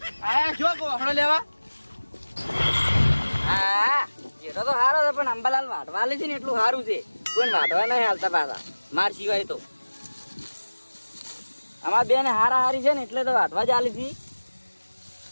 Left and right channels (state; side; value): inverted; both; correlation -1.00